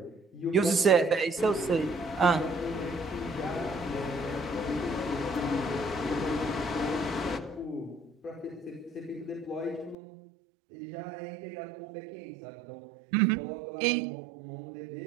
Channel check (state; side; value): drops out; left; at 10.0 s